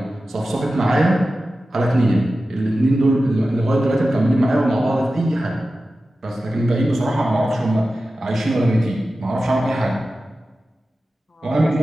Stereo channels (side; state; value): both; normal; correlation 0.94